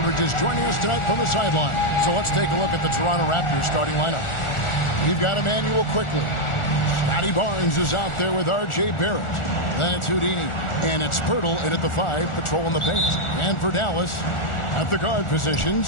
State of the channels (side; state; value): right; late; 1.4 ms